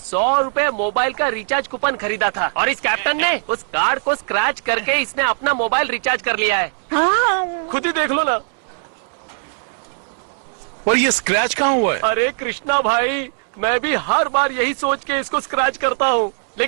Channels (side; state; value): left; silent; digital silence